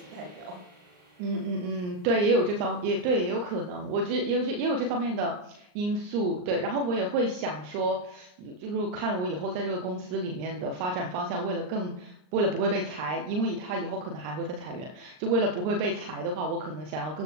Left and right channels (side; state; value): left; late; 39 ms